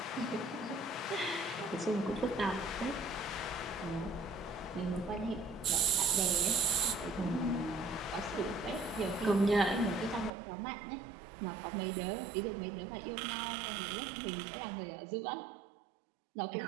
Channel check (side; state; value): left; drops out; at 10.3 s